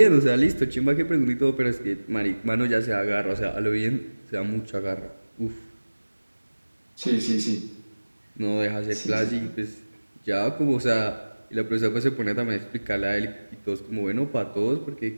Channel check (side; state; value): both; inverted; correlation -1.00